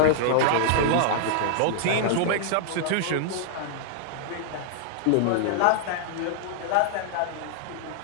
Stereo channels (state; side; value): different; both; correlation -0.01